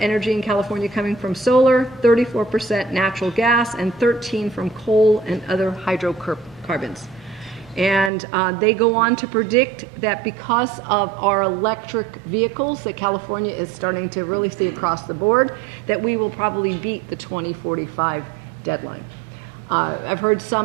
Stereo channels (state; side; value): drops out; left; at 8.1 s